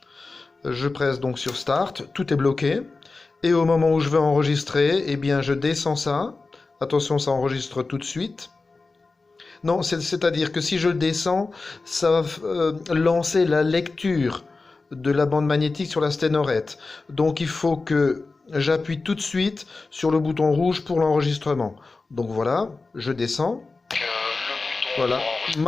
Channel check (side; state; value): right; quieter; 3.8 dB